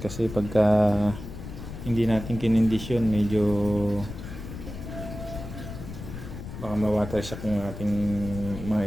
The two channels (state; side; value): noise; left; rumble, 10 dB below the sound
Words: Kasi pagka hindi natin kinondisyon, medyo baka ma-water shock yung ating mga